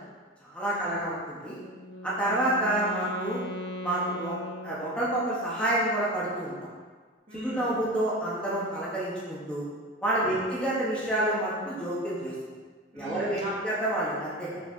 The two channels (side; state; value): both; normal; correlation 0.29